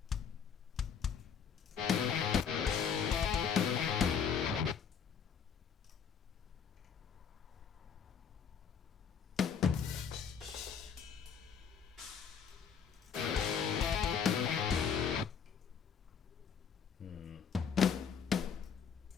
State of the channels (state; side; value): quieter; right; 7.0 dB